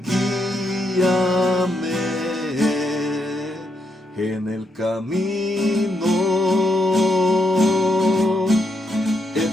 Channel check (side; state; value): both; normal; correlation 0.79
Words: en el camino